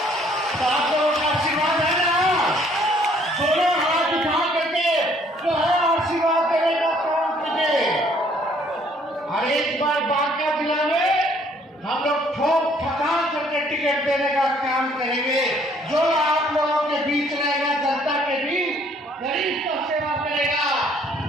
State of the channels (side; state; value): both; normal; correlation 0.62